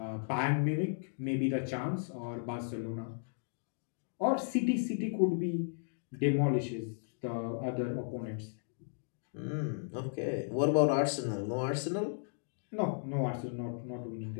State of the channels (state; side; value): silent; right; digital silence